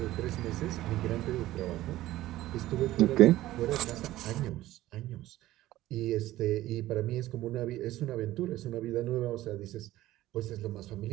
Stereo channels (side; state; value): left; quieter; 15.6 dB